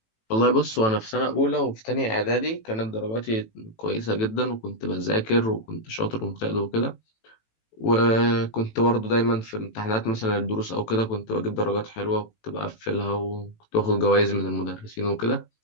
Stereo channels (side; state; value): right; late; 18 ms